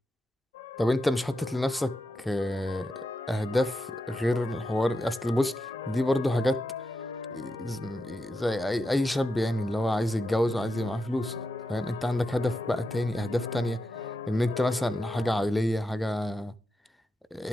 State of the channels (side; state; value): both; normal; correlation 0.87